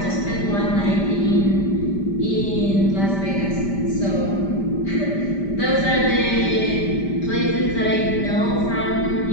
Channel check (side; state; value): right; late; 5.1 ms